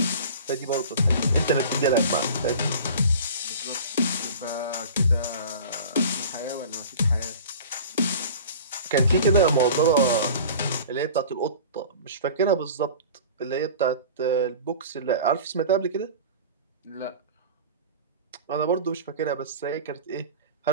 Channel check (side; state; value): both; inverted; correlation -0.39